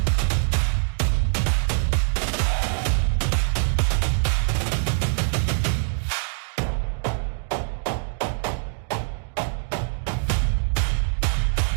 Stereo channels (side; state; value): left; silent; digital silence